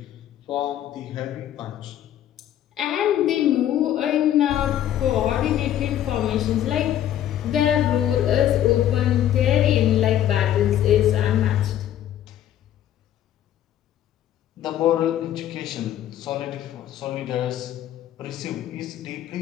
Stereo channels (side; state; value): right; quieter; 11.4 dB